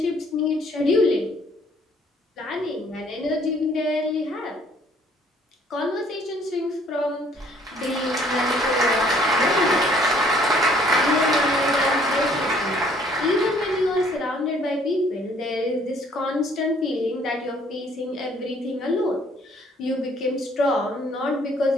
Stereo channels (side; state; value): both; normal; correlation 0.61